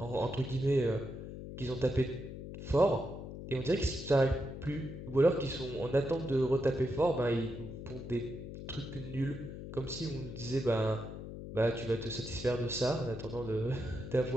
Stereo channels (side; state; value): left; noise; hum, 9 dB below the sound